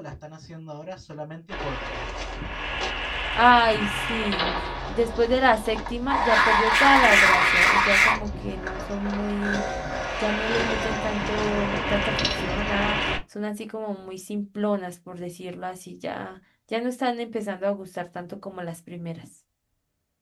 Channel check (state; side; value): identical; both; correlation 1.00